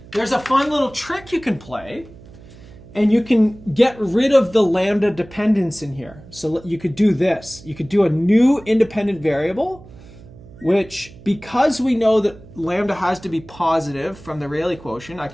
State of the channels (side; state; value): right; noise; hum, 20 dB below the sound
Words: There's a fun little trick you can play, and you can get rid of the lambda dependence in here. So you could do this. You could do a new independent variable, which, because we know that lambda has to be positive from the Rayleigh quotient, I